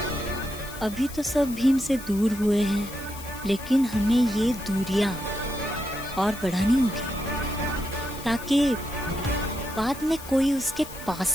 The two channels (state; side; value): noise; left; hiss, 15 dB below the sound